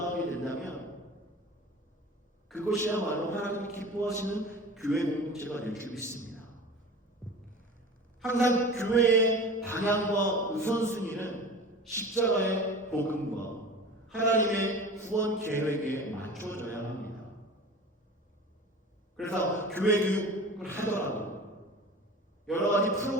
된다면 그것이야말로 하나님이 기뻐하시는 교회 공동체가 될 줄 믿습니다. 항상 교회의 방향과 우선순위는 십자가의 복음과 하나님의 구원 계획에 맞춰져야 합니다. 그래서 교회 교육을 하더라도 여러 가지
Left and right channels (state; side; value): normal; both; correlation 0.37